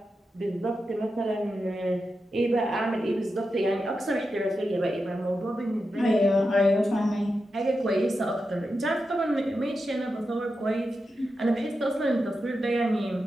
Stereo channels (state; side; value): normal; both; correlation 0.89